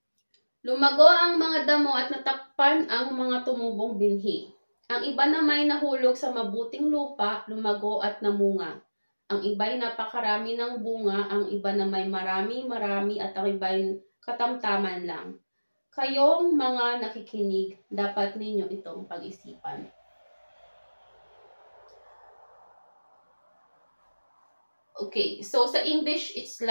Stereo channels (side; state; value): both; inverted; correlation -1.00